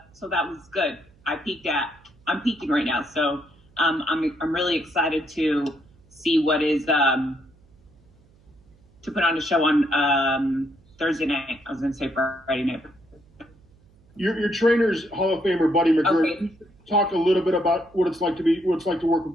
was good. I'm peaking right now, so I'm really excited to see what is to put on a show on Thursday night. I was going to say Friday night. Your trainer's Hall of Famer Buddy McGirt. Okay. Talk a little bit about what it's like to work with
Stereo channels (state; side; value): noise; right; hum, 30 dB below the sound